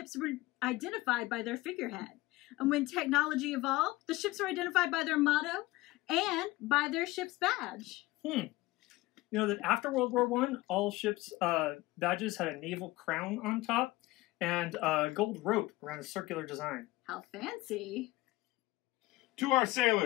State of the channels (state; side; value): quieter; right; 19.4 dB